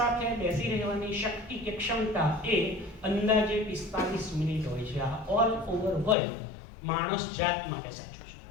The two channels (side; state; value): right; drops out; at 6.2 s